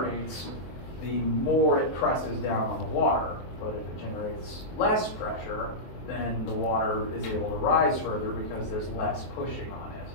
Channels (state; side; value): late; right; 23 ms